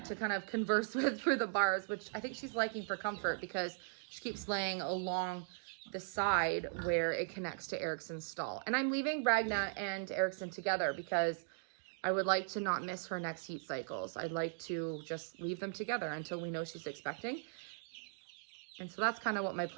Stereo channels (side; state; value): left; silent; digital silence